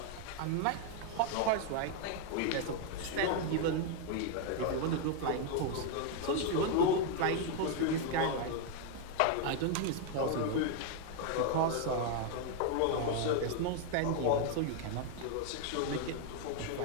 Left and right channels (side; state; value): both; different; correlation 0.00